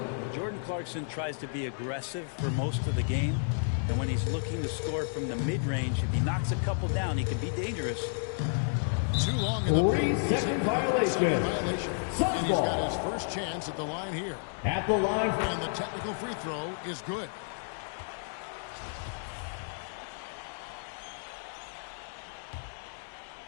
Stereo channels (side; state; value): right; silent; digital silence